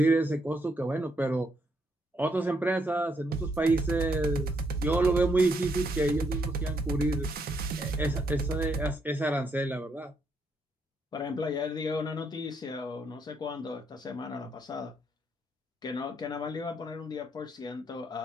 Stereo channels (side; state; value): both; normal; correlation 0.75